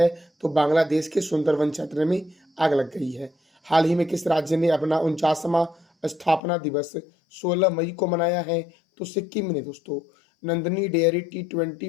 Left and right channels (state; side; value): drops out; right; at 6.4 s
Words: तो बांग्लादेश के सुंदरवन क्षेत्र में आग लग गई है। हाल ही में किस राज्य ने अपना 49वां स्थापना दिवस 16 मई को मनाया है? तो सिक्किम ने दोस्तों। Nandini dairy